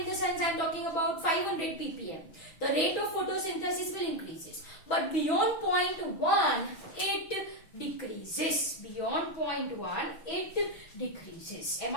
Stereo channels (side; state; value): right; late; 6.1 ms